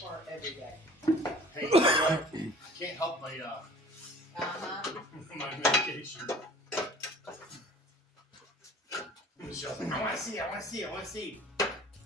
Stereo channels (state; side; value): normal; both; correlation 0.47